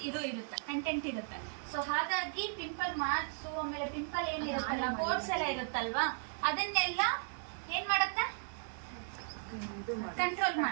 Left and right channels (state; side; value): silent; left; 54 dB below the other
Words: ಇದು ಇರುತ್ತೆ, ಕಂಟೆಂಟ್ ಇರುತ್ತೆ. ಸೊ ಹಾಗಾಗಿ ಪಿಂಪಲ್ ಮಾರ್ಕ್ಸ್, ಆಮೇಲೆ ಪಿಂಪಲ್ ಏನಿರುತ್ತಲ್ಲ, ಪೋರ್ಸ್ ಎಲ್ಲ ಇರುತ್ತಲ್ವಾ, ಅದನ್ನೆಲ್ಲ ಏನ್ ಮಾಡುತ್ತೆ? ಕಂಟ್ರೋಲ್